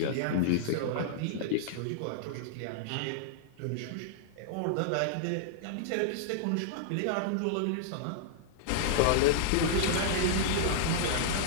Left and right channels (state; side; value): different; both; correlation -0.01